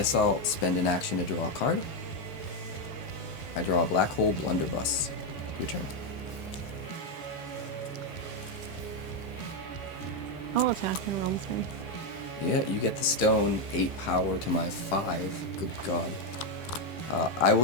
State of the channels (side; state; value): right; late; 13 ms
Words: I'll spend an action to draw a card. I draw a Black Hole Blunderbuss. Your turn. I'll attack in Realm 3. Yeah, you get the stone, 8 power to my 5. Good God. I